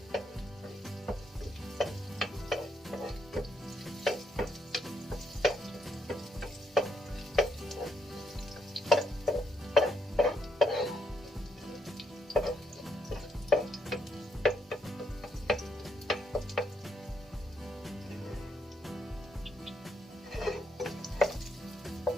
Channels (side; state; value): both; normal; correlation 0.76